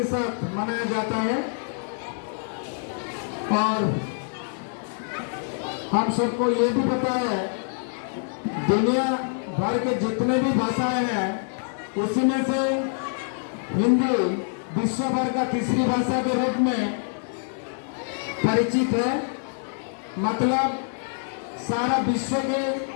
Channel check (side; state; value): right; silent; 60 dB below the other